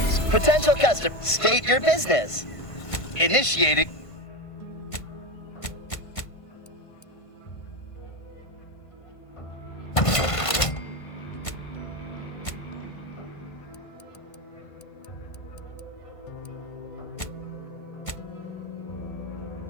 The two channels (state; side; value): late; right; 1.5 ms